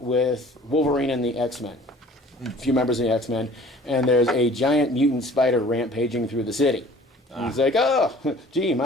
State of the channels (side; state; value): both; normal; correlation 0.49